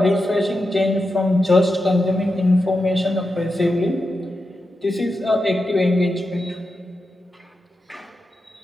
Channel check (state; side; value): normal; both; correlation 0.89